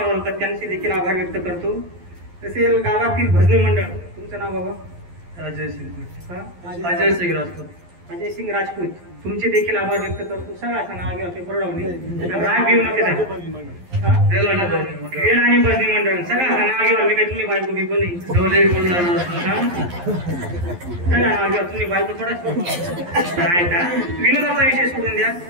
होतात, त्यांचे देखील आभार व्यक्त करतो। तसे गावातील भजनी मंडळ, तुमचं नाव बाबा? अजय सिंग राजपूत। अजय सिंग राजपूत, तुमचे देखील आभार व्यक्त करतो। सगळं असं नाव घ्या, बरोडवणे राग घेऊ नका, वेळ आणि भजनी मंडळ सगळं असं नाव घ्या। मी काय तुम्ही बायको बिको नाही, सगळं नाव घ्या, तुम्ही बायको थोडा काय का विनोदाचा विषय सोडून द्या।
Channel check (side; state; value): left; late; 11 ms